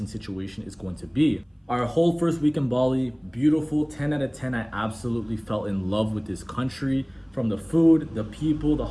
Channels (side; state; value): both; identical; correlation 1.00